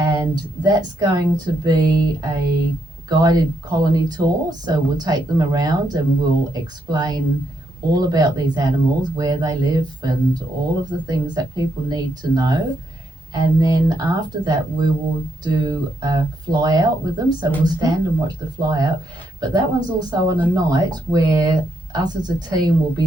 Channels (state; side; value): normal; both; correlation 0.78